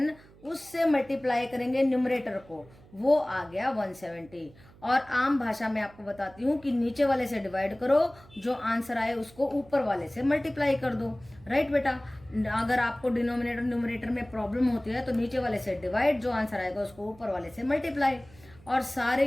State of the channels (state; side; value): noise; right; hum, 24 dB below the sound